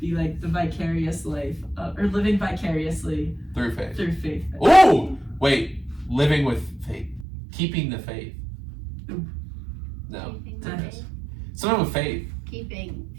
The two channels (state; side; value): drops out; left; at 7.2 s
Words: like the vicarious life, or living vicariously Through faith. through faith. Ooh! Wait, living with faith. Keeping the faith. Ooh. No. Keeping the faith. Someone with faith. Keeping